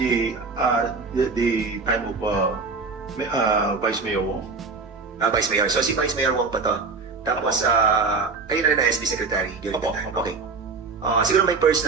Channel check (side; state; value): left; quieter; 4.4 dB